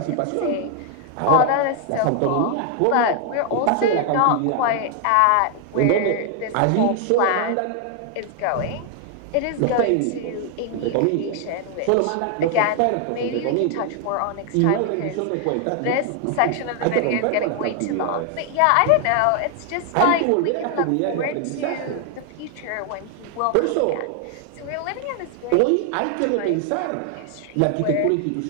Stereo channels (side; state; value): both; different; correlation 0.00